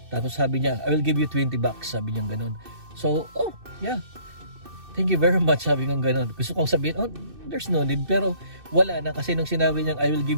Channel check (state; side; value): late; left; 2.6 ms